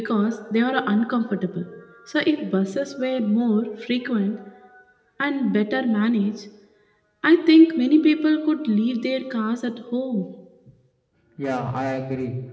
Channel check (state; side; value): identical; both; correlation 1.00